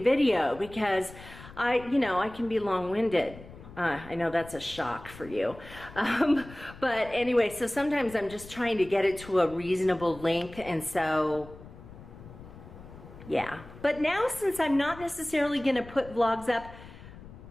video because you know, I can be long-winded. I know that's a shock for you. But anyway, so sometimes I'm just trying to get it to a reasonable length, and so, yeah. But now, since I'm not necessarily gonna put vlogs up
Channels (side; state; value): left; noise; rumble, 17 dB below the sound